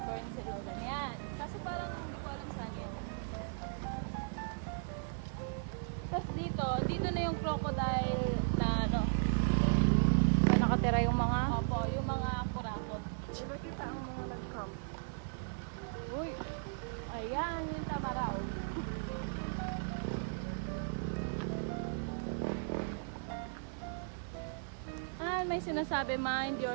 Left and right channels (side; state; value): left; silent; 54 dB below the other